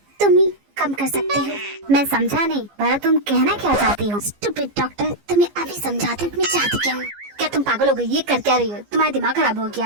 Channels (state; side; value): late; left; 15 ms